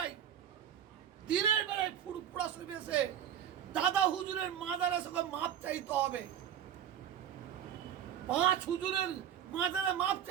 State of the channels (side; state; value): left; quieter; 9.5 dB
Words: ফুরফুরা শরীফে এসে দাদা হুজুরের মাজারে সঙ্গে মাপ চাইতে হবে। 5 হুজুরের মাজারে মাপ